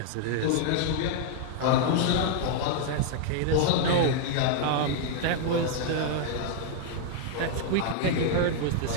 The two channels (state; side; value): different; both; correlation 0.00